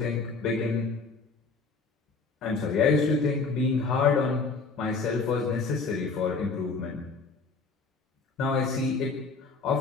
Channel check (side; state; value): right; quieter; 4.3 dB